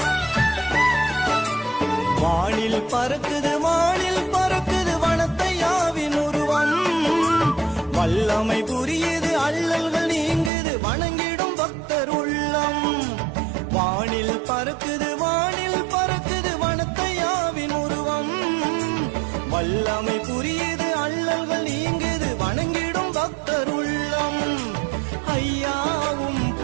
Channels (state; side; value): drops out; left; at 10.5 s